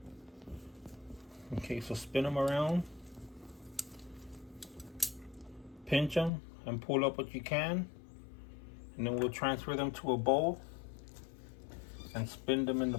Okay, so spin them around, pinch them, and pull up what you can, and then we'll transfer them to a bowl and spin them in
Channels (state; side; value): drops out; right; at 6.3 s